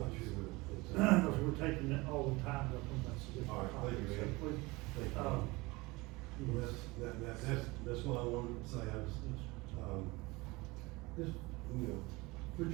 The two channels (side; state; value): left; quieter; 23.1 dB